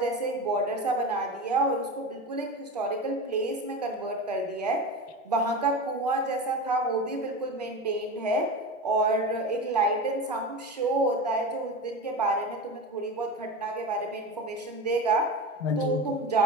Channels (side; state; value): both; normal; correlation 0.26